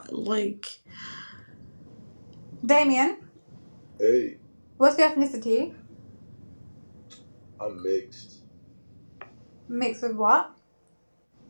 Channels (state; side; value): inverted; both; correlation -1.00